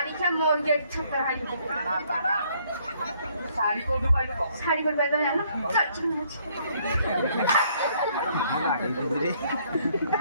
क्या मोर गेट छपर है साड़ी को दुपाई को साड़ी पर बैठो है ना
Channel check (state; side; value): inverted; both; correlation -0.66